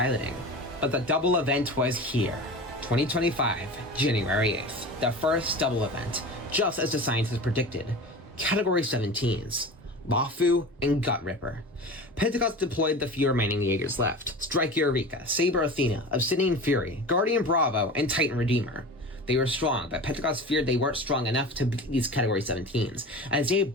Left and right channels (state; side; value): normal; both; correlation 0.33